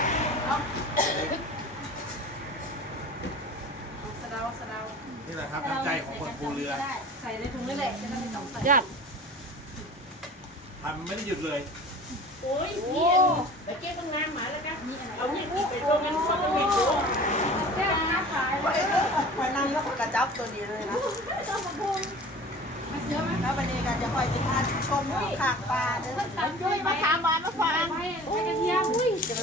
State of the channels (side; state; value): both; normal; correlation 0.41